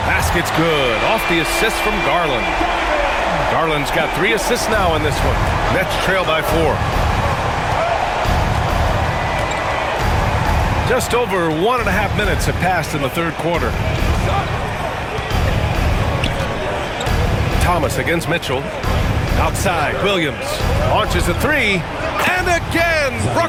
basket's good. Off the assist from Garland. Garland's got 3 assists now in this one. Nets trail by 4. Just over 1.5 minutes have passed in the third quarter. Thomas against Mitchell. Outside, Williams launches a 3. And again,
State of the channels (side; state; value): both; identical; correlation 1.00